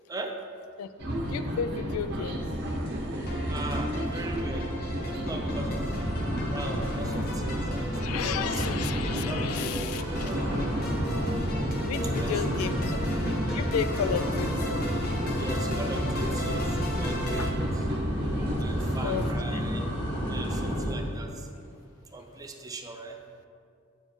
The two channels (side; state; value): both; normal; correlation 0.59